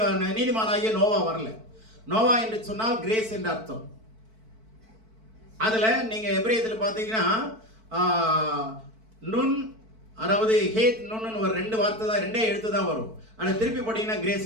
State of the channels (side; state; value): left; late; 4.5 ms